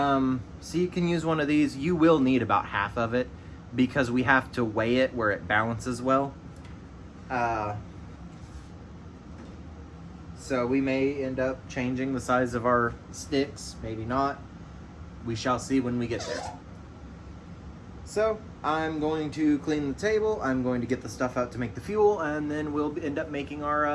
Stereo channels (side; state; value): both; identical; correlation 1.00